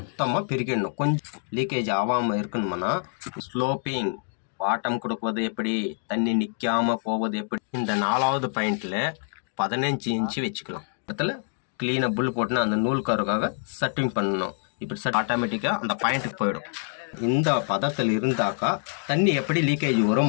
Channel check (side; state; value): right; silent; 58 dB below the other